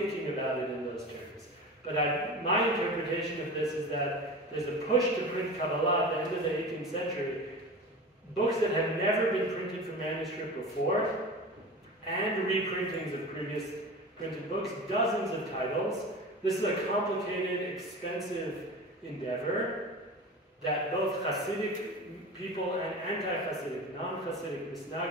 about it in those terms. But my interpretation of this is that there's a push to print Kabbalah at the end of the 18th century, books that have never been printed from manuscript before, and reprintings of previous printed books, dozens of titles. This is a complicated, expensive endeavor that both Hasidic people and anti-Hasidic, non-Hasidic,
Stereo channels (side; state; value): both; normal; correlation 0.32